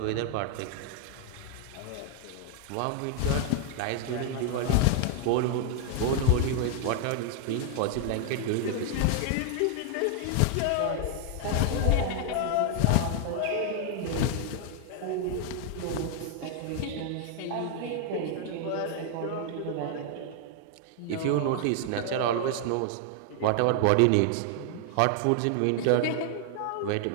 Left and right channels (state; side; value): different; both; correlation 0.00